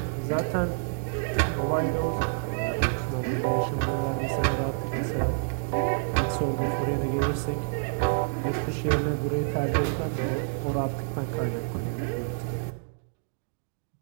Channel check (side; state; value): left; silent; digital silence